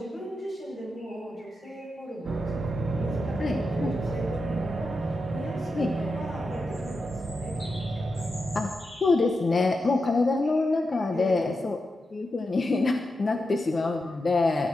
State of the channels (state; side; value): normal; both; correlation 0.88